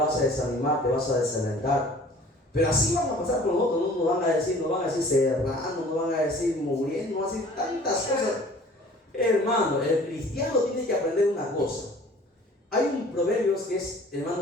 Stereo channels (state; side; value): normal; both; correlation 0.49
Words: a desanimar, te vas a desalentar. Pero así van a pasar con nosotros, ¿no? Nos van a decir serrano, nos van a decir muriendo, nos van a decir tantas cosas. Hermano, el cristiano tiene que aprender una cosa. Hay un proverbio que es,